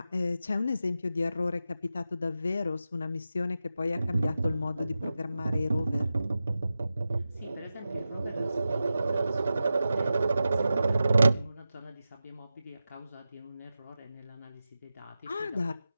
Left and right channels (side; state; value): both; inverted; correlation -0.92